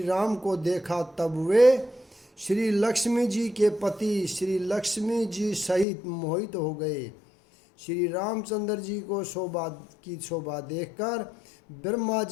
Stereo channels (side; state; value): right; drops out; at 5.9 s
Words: राम को देखा तब वे श्री लक्ष्मी जी के पति श्री लक्ष्मी जी सहित मोहित हो गए। श्री रामचंद्र जी को शोभा देखकर ब्रह्मा